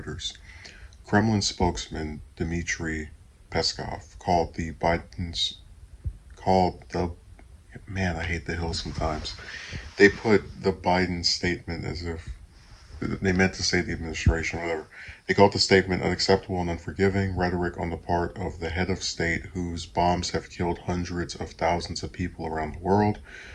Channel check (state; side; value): identical; both; correlation 1.00